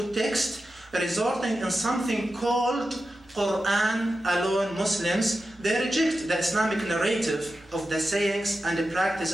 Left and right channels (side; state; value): both; normal; correlation 0.91